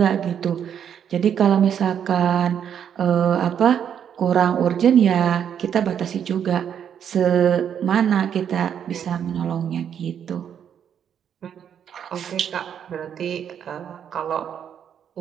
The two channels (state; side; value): quieter; left; 8.6 dB